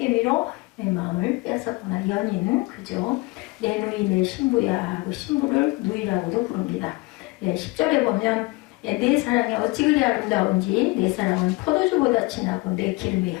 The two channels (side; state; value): right; quieter; 24.2 dB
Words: 내 마음을 빼앗았구나. 연인 그죠. 내 누이 내 신부야 하고 신부를 누이라고도 부릅니다. 10절에 보면 내 사랑이 어찌 그리 아름다운지 내 사랑은 포도주보다 진하고 내 기름의